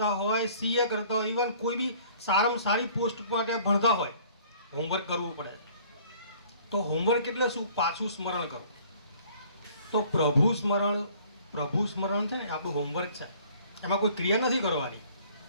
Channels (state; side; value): inverted; both; correlation -0.54